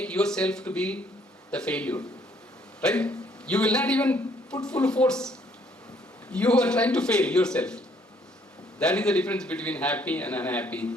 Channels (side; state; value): both; normal; correlation 0.65